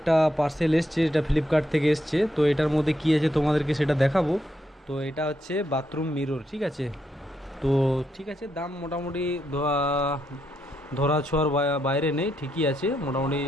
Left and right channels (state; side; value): normal; both; correlation 0.80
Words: পার্সেল এসছে, এটা ফ্লিপকার্ট থেকে এসছে। তো এটার মধ্যে কি আছে তোমাদেরকে সেটা দেখাবো। তো এটা হচ্ছে বাথরুম মিরর, ঠিক আছে? তো ঠিক আছে, দাম মোটামুটি ধরা ছোঁয়ার বাইরে নেই, ঠিকই আছে মোটামুটি,